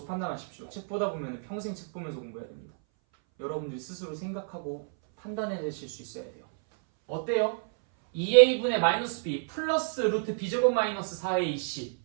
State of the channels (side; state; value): left; silent; 58 dB below the other